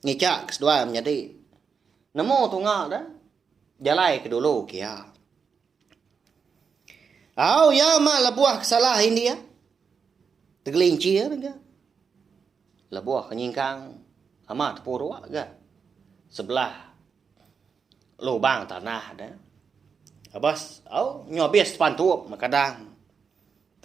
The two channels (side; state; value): left; quieter; 6.0 dB